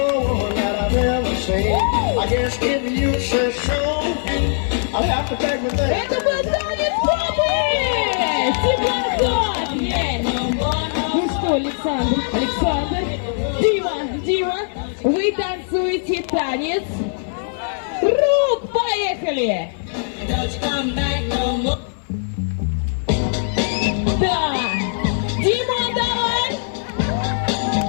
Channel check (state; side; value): silent; right; 56 dB below the other